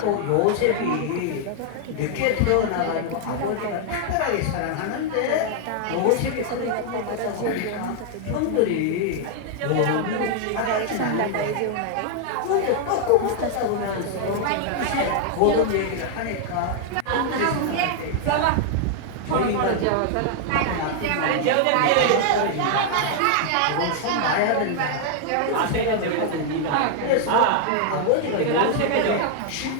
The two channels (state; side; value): different; both; correlation 0.00